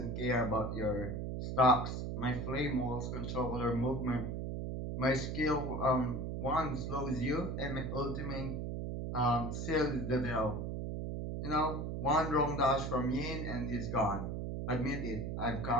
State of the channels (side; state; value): right; noise; hum, 3 dB below the sound